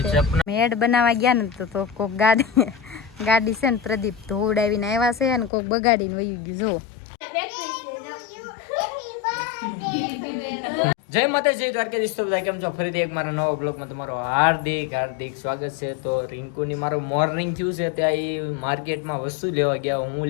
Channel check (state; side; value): drops out; right; at 5.5 s